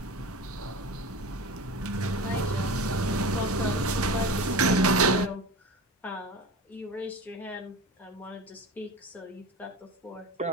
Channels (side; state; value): both; normal; correlation 0.31